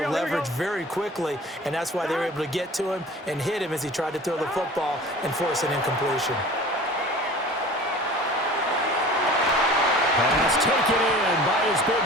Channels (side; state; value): both; normal; correlation 0.42